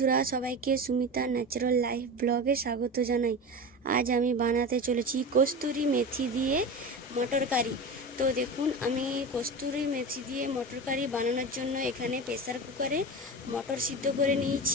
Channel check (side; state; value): both; normal; correlation 0.27